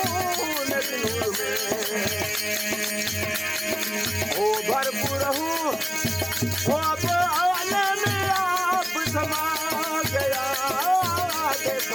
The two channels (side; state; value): both; identical; correlation 1.00